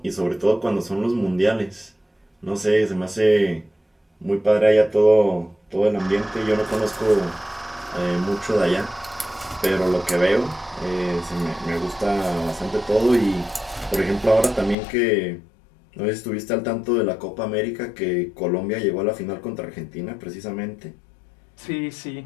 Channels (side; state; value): right; drops out; at 14.8 s